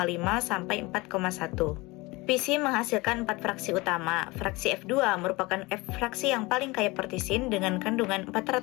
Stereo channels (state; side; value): quieter; right; 23.1 dB